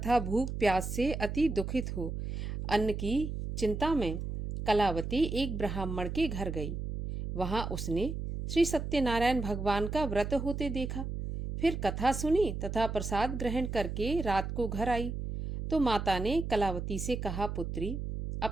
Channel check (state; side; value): noise; right; hum, 5 dB below the sound